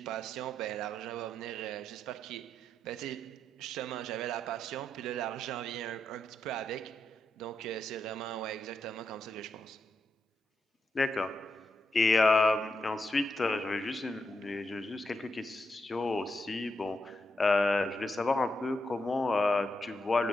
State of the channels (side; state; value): both; normal; correlation 0.83